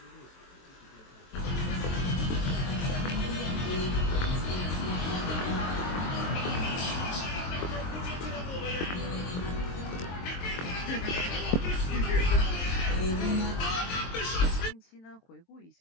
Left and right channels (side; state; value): right; late; 23 ms